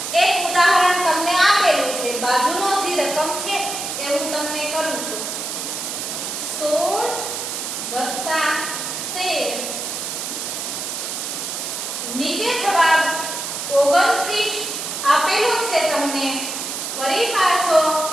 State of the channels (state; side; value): noise; right; hiss, 5 dB below the sound